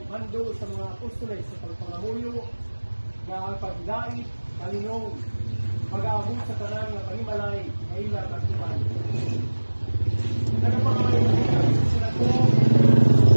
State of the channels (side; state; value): both; inverted; correlation -1.00